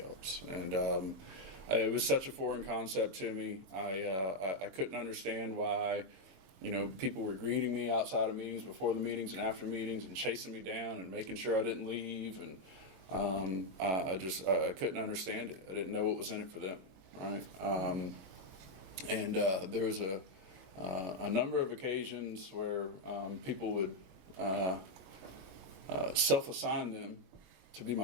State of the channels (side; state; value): left; late; 22 ms